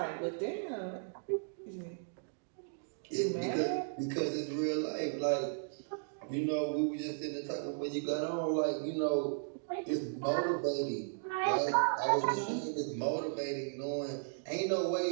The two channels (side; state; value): left; silent; digital silence